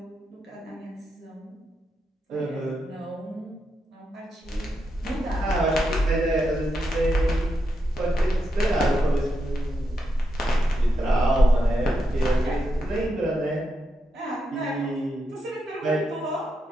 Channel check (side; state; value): both; normal; correlation 0.84